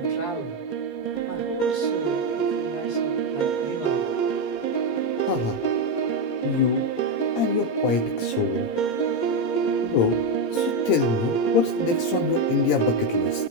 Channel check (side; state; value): right; late; 18 ms